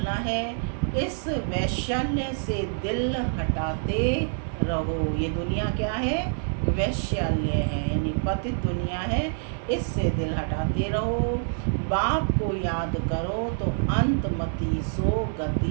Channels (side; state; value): left; silent; digital silence